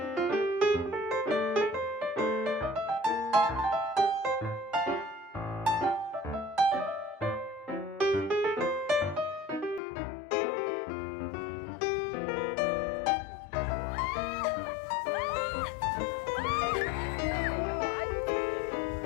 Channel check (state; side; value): drops out; right; at 9.8 s